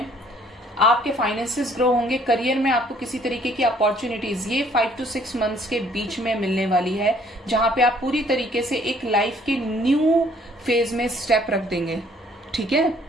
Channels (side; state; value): both; normal; correlation 0.61